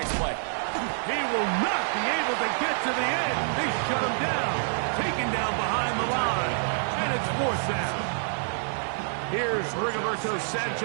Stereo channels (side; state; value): left; silent; digital silence